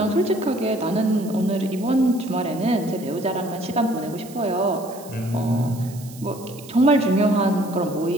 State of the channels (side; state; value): right; noise; hiss, 19 dB below the sound